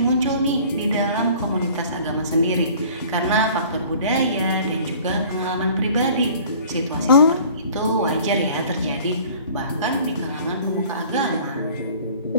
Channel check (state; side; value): inverted; both; correlation -0.49